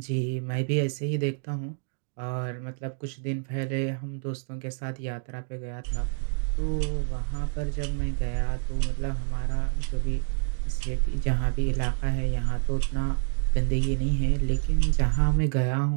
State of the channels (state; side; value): silent; left; digital silence